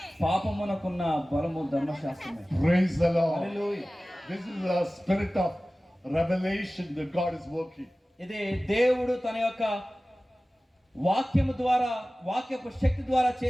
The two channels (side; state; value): both; normal; correlation 0.97